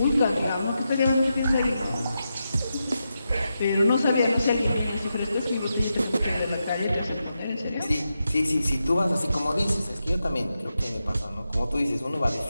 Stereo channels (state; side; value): inverted; both; correlation -0.87